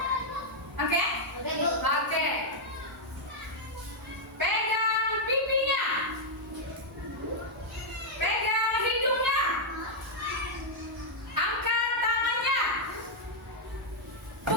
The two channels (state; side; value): normal; both; correlation -0.03